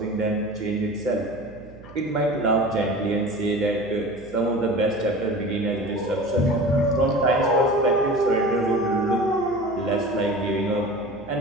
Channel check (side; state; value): right; noise; hum, 20 dB below the sound